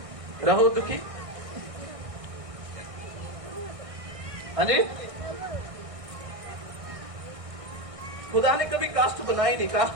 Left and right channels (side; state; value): left; late; 1.6 ms